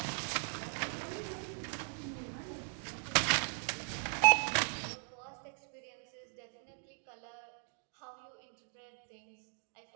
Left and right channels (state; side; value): silent; left; 52 dB below the other